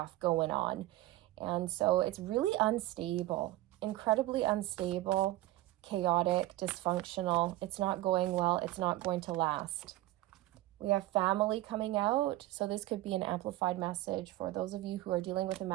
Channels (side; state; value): left; quieter; 16.7 dB